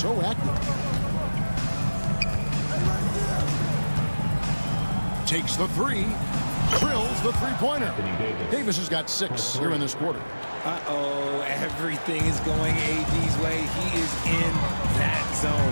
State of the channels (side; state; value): both; inverted; correlation -1.00